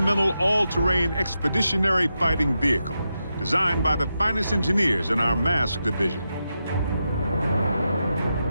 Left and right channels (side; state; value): both; inverted; correlation -0.87